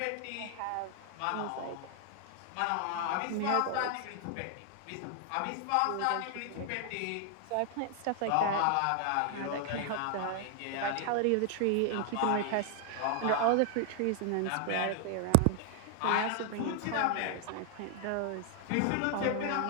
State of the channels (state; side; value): different; both; correlation 0.00